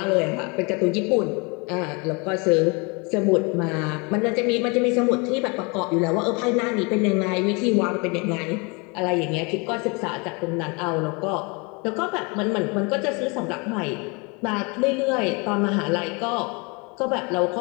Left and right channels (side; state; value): right; quieter; 30.1 dB